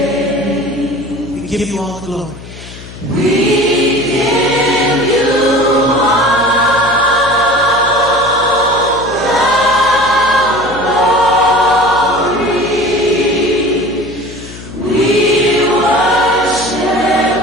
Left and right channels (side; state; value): left; noise; hum, 16 dB below the sound